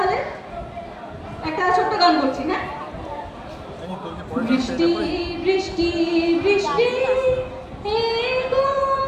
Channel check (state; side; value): identical; both; correlation 1.00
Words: একটা ছোট্ট গান করছি, হ্যাঁ? বৃষ্টি বৃষ্টি বৃষ্টি হে